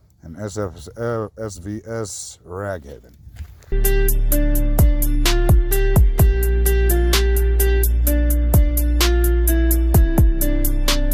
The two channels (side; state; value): both; identical; correlation 1.00